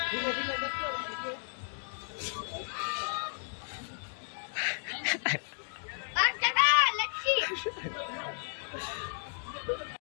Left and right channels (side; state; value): right; silent; 55 dB below the other